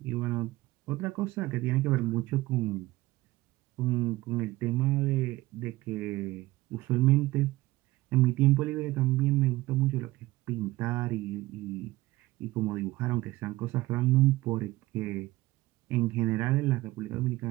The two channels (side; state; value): left; quieter; 18.5 dB